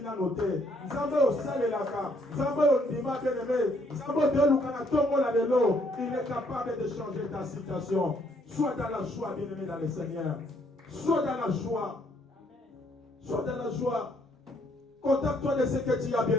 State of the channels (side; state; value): both; normal; correlation 0.68